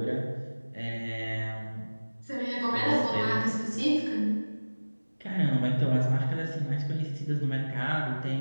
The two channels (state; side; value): inverted; both; correlation -1.00